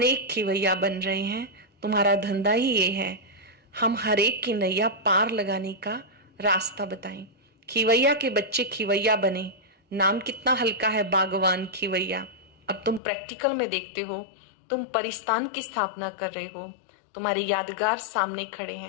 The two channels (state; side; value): drops out; right; at 13.0 s